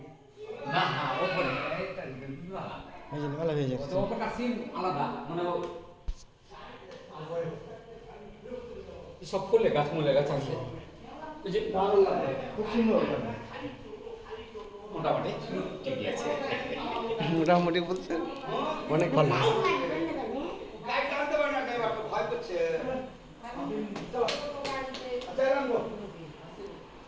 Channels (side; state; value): both; identical; correlation 1.00